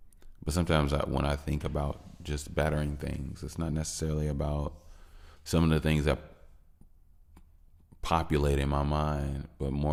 sometimes when I think about just bettering things, it's not necessarily about some of the things that populate in my mind, but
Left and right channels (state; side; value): identical; both; correlation 1.00